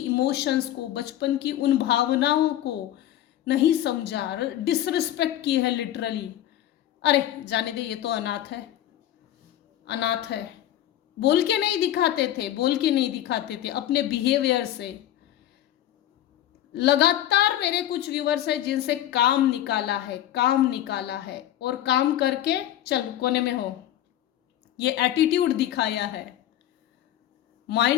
को, बचपन की उन भावनाओं को नहीं समझा, डिसरिस्पेक्ट की है लिटरली। अरे जाने दे, ये तो अनाथ है। बोल के नहीं दिखाते थे अपने बिहेवियर से। लगातार मेरे कुछ व्यूअर्स है जिनसे काम निकाला है और काम करके चल कोने में हो, ये एटीट्यूड दिखाया है,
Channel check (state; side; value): quieter; right; 12.5 dB